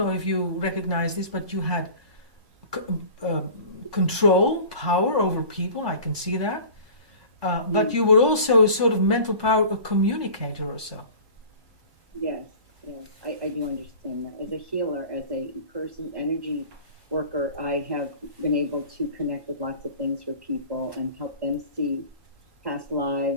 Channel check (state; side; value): late; left; 1.1 ms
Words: if you recognize this, but you had control, power over people. I can see that. But you were also sort of mental power, a communicator or so. Yes, I do understand that. As a healer, as a person, energy worker, I have been able to connect with lots of things for people and help them see past